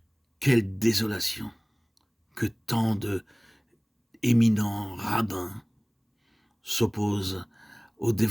quelle désolation que tant de éminents rabbins s'opposent au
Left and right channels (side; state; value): both; identical; correlation 1.00